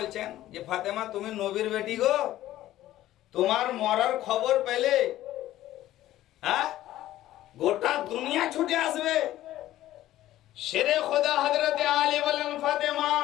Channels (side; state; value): right; quieter; 14.3 dB